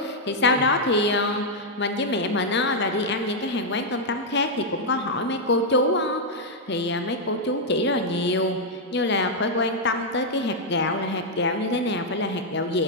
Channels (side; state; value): both; normal; correlation -0.03